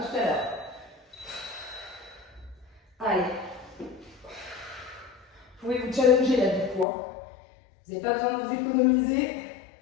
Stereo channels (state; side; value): drops out; right; at 6.9 s